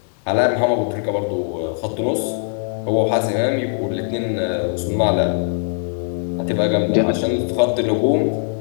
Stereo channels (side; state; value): right; silent; digital silence